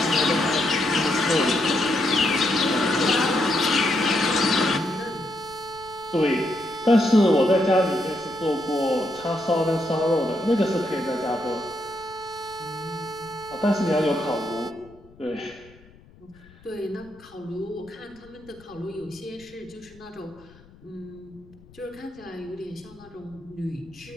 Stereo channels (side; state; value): left; noise; rumble, 25 dB below the sound